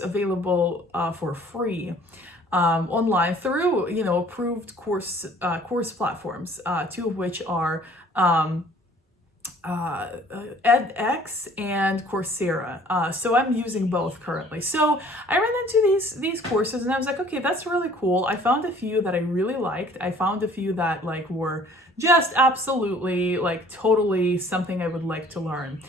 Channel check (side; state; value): both; normal; correlation 0.54